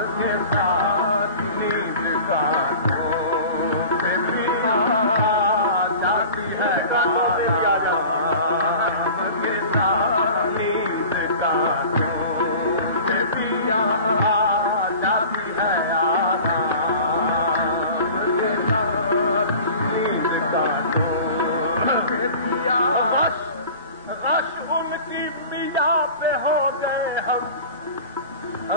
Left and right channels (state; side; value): inverted; both; correlation -0.40